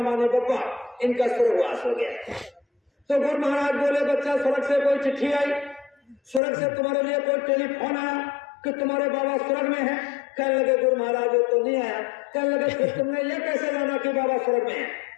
माने बब्बा, इनका स्वर्गवास हो गया। तो गुरु महाराज बोले, बच्चा स्वर्ग से कोई चिट्ठी आई, स्वर्ग से तुम्हारे लिए कोई टेलीफोन आया कि तुम्हारे बाबा स्वर्ग में है? कहने लगे, गुरु महाराज ये तो नहीं आया। कहने लगे, फिर तुमने ये कैसे जाना कि बाबा स्वर्ग में है?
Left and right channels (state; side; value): drops out; right; at 6.4 s